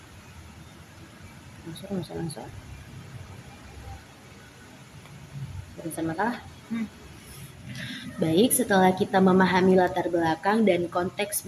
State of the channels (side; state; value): both; identical; correlation 1.00